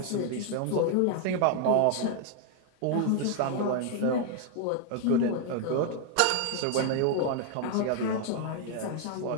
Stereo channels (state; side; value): different; both; correlation 0.00